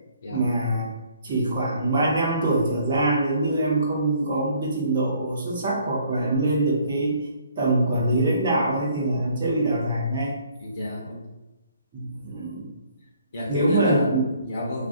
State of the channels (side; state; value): both; inverted; correlation -0.61